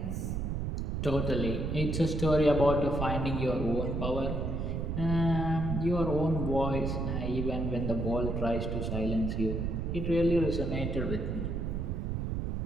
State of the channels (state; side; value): noise; right; rumble, 1 dB below the sound